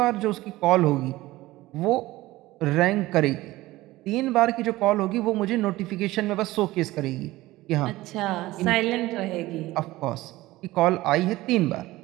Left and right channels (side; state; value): left; quieter; 18.0 dB